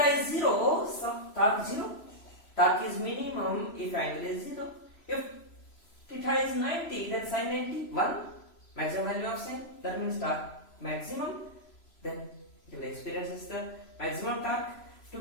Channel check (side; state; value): right; late; 3.0 ms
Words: is 0, so torque 0. Torque is minimum if angle is 0. If theta is 90, then sin 90, 1. Maximum value of sin. That means torque maximum. Then it will experience the maximum torque. To